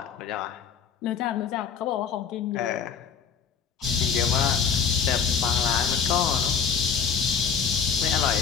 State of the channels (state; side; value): quieter; right; 6.9 dB